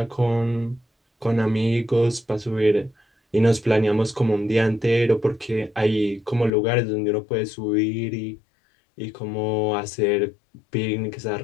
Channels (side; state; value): right; drops out; at 6.5 s